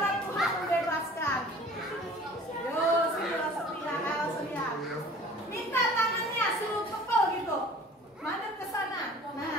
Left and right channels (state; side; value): normal; both; correlation 0.47